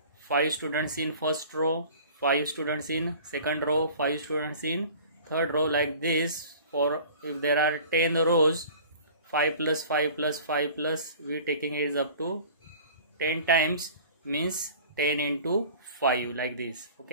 5 students in first row, 5 students in second row, 5 students in third row, like this. For if there are 10 rows, 5 plus 5 plus 5 plus, we taking it is up to 10 times, means 10 into 5, like this.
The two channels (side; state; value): both; inverted; correlation -0.45